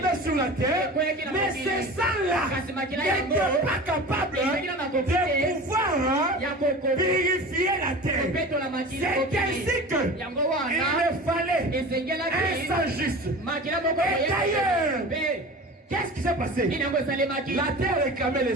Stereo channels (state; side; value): normal; both; correlation 0.35